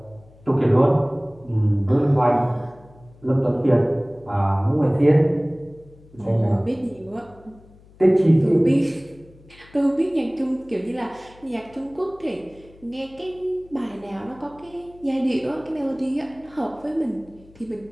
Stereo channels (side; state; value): left; noise; hum, 25 dB below the sound